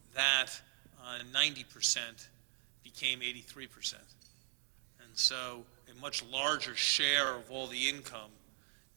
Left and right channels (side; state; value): left; silent; digital silence